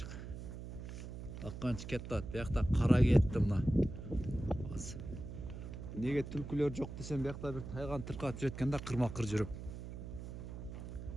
Акканчык кетти. Биякта кара кетти мына. Неге түлкүлөр жок десем, биякта бир тайган тыркап жүрөткөн да кырма-кыр жүрүп.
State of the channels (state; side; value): noise; right; hum, 9 dB below the sound